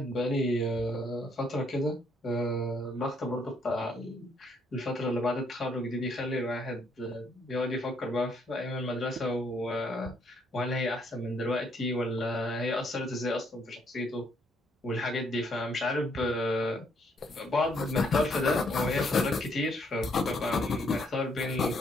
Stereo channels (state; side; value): normal; both; correlation 0.70